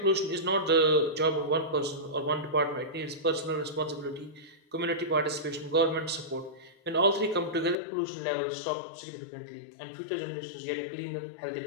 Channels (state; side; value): drops out; right; at 7.8 s